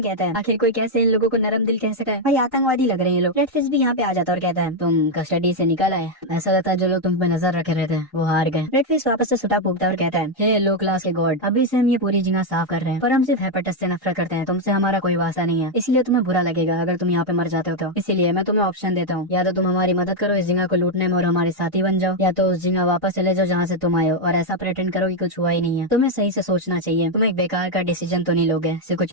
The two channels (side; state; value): both; normal; correlation 0.02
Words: कहता है आखिर कोई कैसे इन लोगों को नरम दिल कह सका है? भाई आतंकवादी लग रहे हैं लोग। रेड फिश भी यहाँ पे आ जाता है और कहता है तुम कस्टडी से निकल आए, ऐसा लगता है जो लोग तुम पे नजर रखे रहते हैं वो हार गए। रेड फिश वापस से सुटा फूकता है और कहता है हे लो क्लास के गॉड, अभी से हम ये पूरी जगह साफ कर रहे हैं, पर हम सिर्फ हेपेटस से नफरत करते हैं, तुमसे हमारा कोई वास्ता नहीं है, इसलिए तुम्हें बुरा लगेगा अगर तुम यहाँ पे मर जाते हो तो। इसीलिए मैं तुम्हें ऑप्शन देता हूँ, या तो तुम हमारी मदद करो इस जगह को लूटने में और हमारे साथी बन जाओ, या तो उस जगह वापस चले जाओ जहाँ से तुम आए हो और ऐसा प्रेटेंड करो कि कुछ हुआ ही नहीं है। तुम्हें सही से सोचना चाहिए, तुम एक बेकार का डिसीजन तो नहीं लोगे सिर्फ कुछ